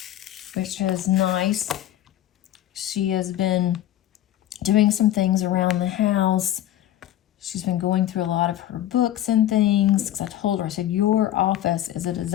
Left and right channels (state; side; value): quieter; right; 12.7 dB